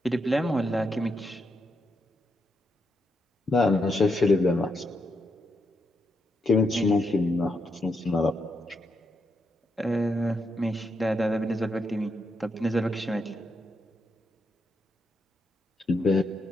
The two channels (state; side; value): normal; both; correlation 0.81